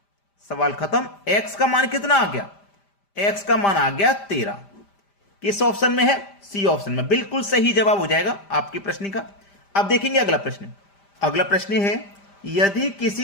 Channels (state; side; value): late; right; 5.0 ms